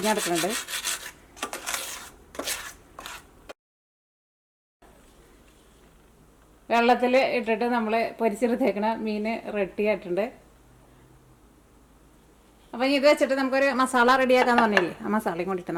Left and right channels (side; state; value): both; identical; correlation 1.00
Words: വെള്ളത്തിൽ ഇട്ടിട്ട് നമ്മൾ പൊരിച്ചെടുത്തേക്കണ മീൻ റെഡി ആയിട്ടുണ്ട്. അപ്പം ഇത് വെച്ചിട്ട് നമുക്കൊരു മസാല റെഡിയാക്കാന്ന് പറഞ്ഞില്ലേ, ആ മസാലയും കൊണ്ടിട്ട്